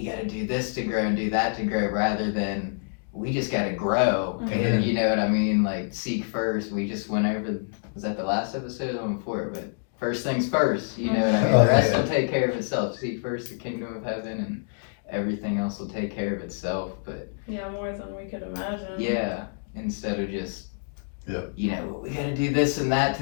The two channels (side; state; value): right; silent; digital silence